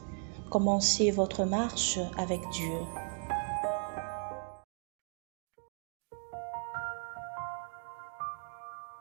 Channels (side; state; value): left; silent; 54 dB below the other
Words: Commencez votre marche avec Dieu.